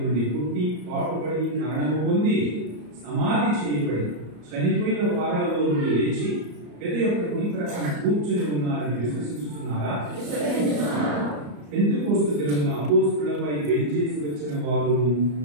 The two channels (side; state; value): left; late; 34 ms